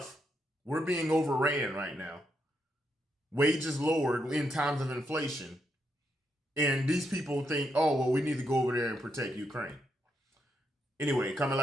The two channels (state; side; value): normal; both; correlation 0.80